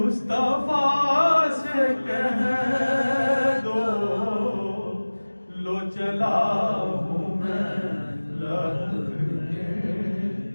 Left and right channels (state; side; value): inverted; both; correlation -1.00